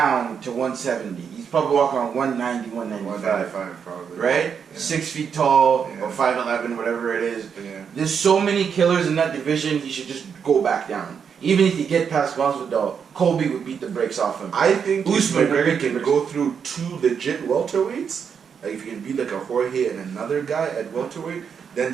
to 170. He's probably walking on 190, 195. 195 probably. Right? Yeah. 6 feet tall, Yeah. or 5'11", whatever it is. Yeah. There's so many killers in that division, he should just go back down. Even if you get past Masvidal, Colby would beat the brakes off him. I think if Usman would McGregor beat the can brakes. go through 2 legit welterweights, like if he can beat like a Jorge and another guy at welterweight,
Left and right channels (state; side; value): quieter; left; 6.9 dB